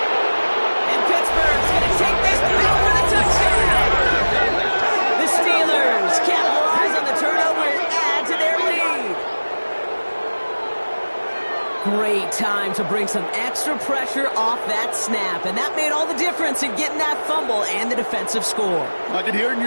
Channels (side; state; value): both; inverted; correlation -1.00